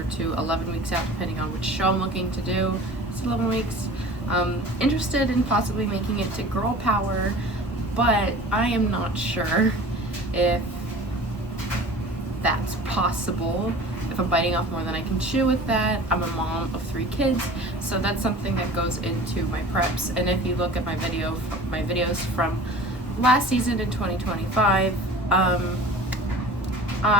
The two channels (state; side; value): normal; both; correlation 0.41